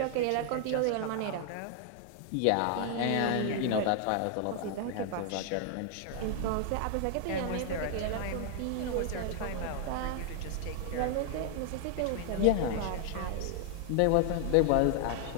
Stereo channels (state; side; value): different; both; correlation 0.00